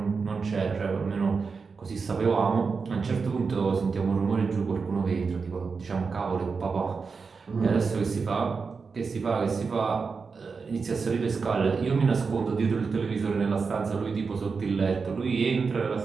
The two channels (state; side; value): quieter; left; 5.0 dB